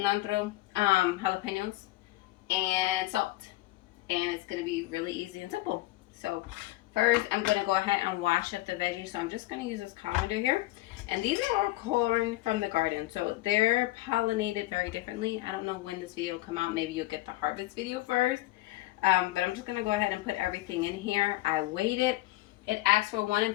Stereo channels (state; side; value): quieter; right; 18.3 dB